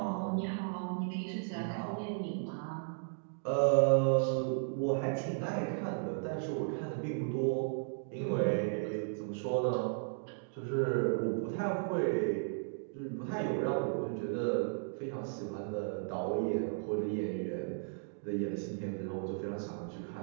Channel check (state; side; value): silent; left; digital silence